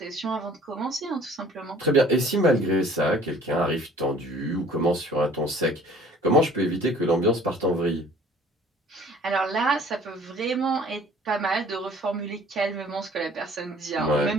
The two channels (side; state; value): both; normal; correlation 0.52